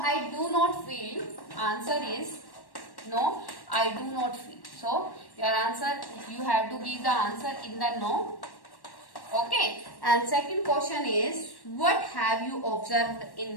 I do not feel. Answer is no, I do not feel. So your answer, you have to give the answer in the no. Okay. And second question is, what have you observed in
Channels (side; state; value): right; late; 1.1 ms